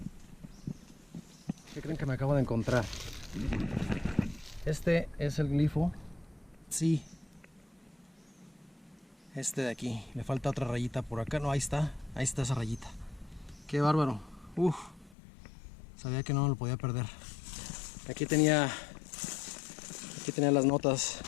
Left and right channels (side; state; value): right; drops out; at 15.2 s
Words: ¿Qué creen que me acabo de encontrar? Este es el glifo. Sí, este de aquí, le falta otra rayita por acá. No, ahí está esa rayita. Qué bárbaro. Uf, sabía que no lo podía perder. Aquí tenía las notas